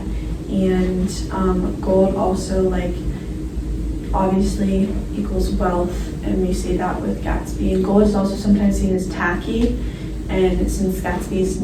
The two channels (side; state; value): both; identical; correlation 1.00